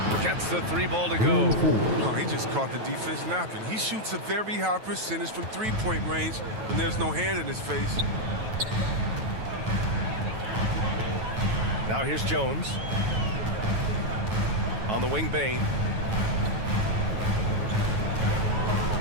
Gets the 3-ball to go. No, he just caught the defense napping. He shoots a very high percentage from three-point range when there's no hand in his face. Now here's Jones. On the wing, Bain.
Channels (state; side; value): late; left; 9.2 ms